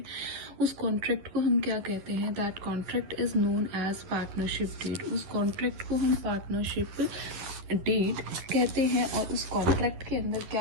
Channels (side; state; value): left; late; 10 ms